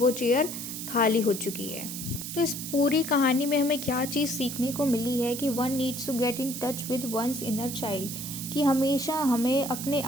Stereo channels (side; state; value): right; noise; hiss, 7 dB below the sound